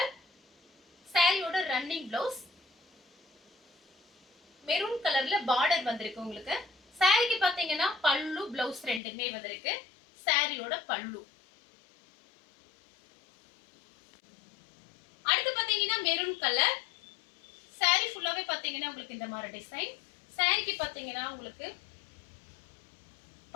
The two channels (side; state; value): right; drops out; at 9.0 s